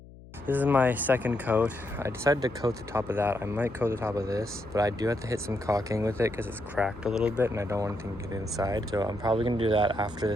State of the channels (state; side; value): noise; left; hum, 19 dB below the sound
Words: This is my second coat. I decided to coat the top of that. I might coat the top of this, but I do have to hit some caulking with it because it's cracked a little bit and I don't want anything to get inside. So I'm probably gonna do that after the